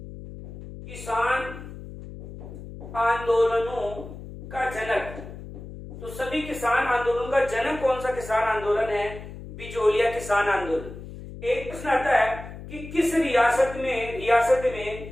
किसान आंदोलनों का जनक, तो सभी किसान आंदोलन का जनक कौन सा किसान आंदोलन है? बिजोलिया किसान आंदोलन। एक प्रश्न आता है कि किस रियासत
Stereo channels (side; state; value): left; noise; hum, 13 dB below the sound